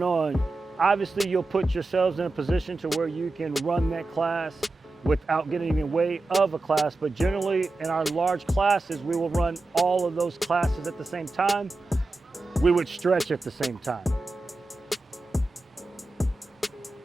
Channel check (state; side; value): quieter; left; 3.0 dB